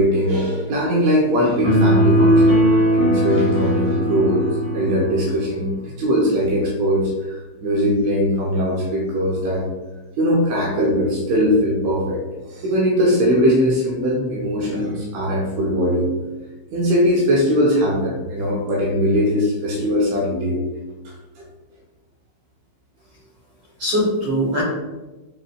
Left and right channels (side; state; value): left; late; 16 ms